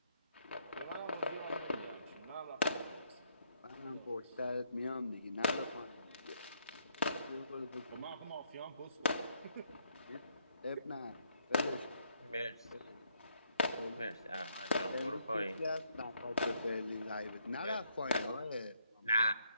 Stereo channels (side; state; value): both; inverted; correlation -0.73